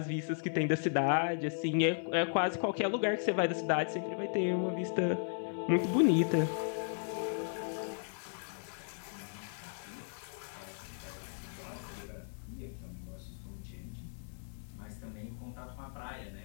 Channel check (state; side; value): silent; right; digital silence